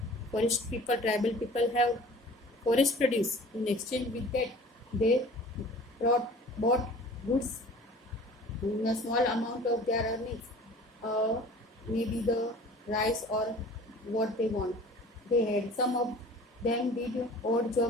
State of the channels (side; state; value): both; normal; correlation 0.45